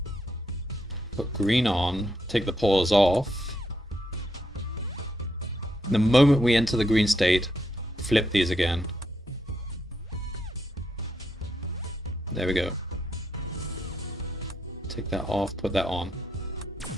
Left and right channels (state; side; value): normal; both; correlation 0.79